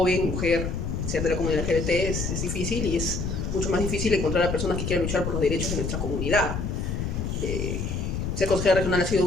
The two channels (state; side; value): noise; left; rumble, 2 dB below the sound